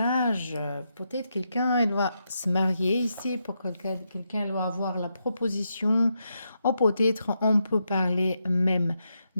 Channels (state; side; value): inverted; both; correlation -0.83